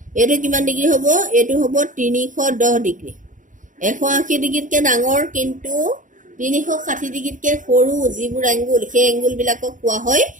এইটো কিমান ডিগ্ৰী হ'ব? এইটো হ'ব 310 ডিগ্ৰী। 180 ডিগ্ৰীতকৈ ডাঙৰ কিন্তু 360 ডিগ্ৰীতকৈ সৰু যিবোৰ এংগুল, সেই এংগুলবিলাকক কোৱা হয়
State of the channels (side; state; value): left; late; 0.38 ms